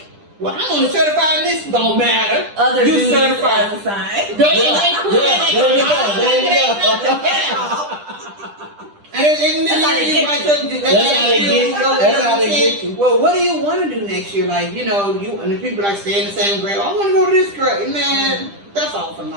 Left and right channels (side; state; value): left; late; 10 ms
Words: well, I'm only certified in this, don't matter. Other you duties certified. as assigned. There you go. And then That's how they get you. Well, what do you want to do next year? Like, you know, and the people like stay in the same grade. I want to go to this grade. Man, that's all for